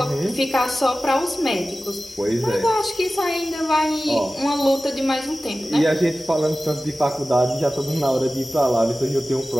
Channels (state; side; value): normal; both; correlation 0.96